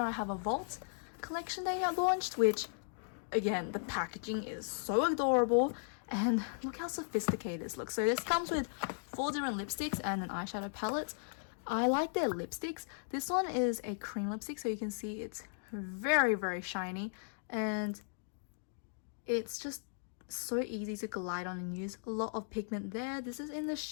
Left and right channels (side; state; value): right; silent; digital silence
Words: I have a Vault collection they have launched, which again, the packaging is so adorable. And look how sophisticated this looks. So this comes with 4 different lipsticks and an eyeshadow palette. I like their lipsticks. This one is a cream lipstick, so you can see it's very, very shiny. And it's just so easy to glide on and use. A lot of pigment there. This is in the